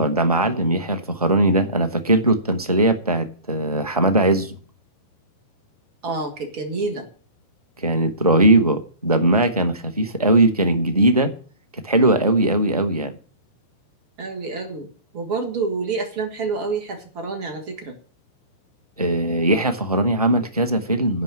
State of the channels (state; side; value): inverted; both; correlation -0.42